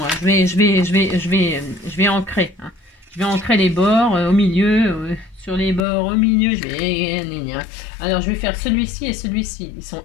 Je vais ancrer. Hein. Je vais ancrer les bords au milieu, sur les bords au milieu. Je vais. Alors je vais faire celui-ci et celui-ci.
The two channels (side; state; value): right; drops out; at 5.8 s